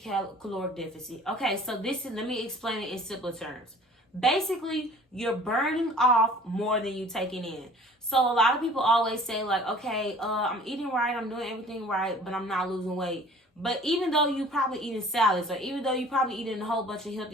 deficit? Okay, so let me explain it in simpler terms. Basically, you're burning off more than you're taking in. So a lot of people always say like, okay, I'm eating right, I'm doing everything right, but I'm not losing weight. But even though you probably eating salads, or even though you probably eating a whole bunch of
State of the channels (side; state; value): both; normal; correlation 0.49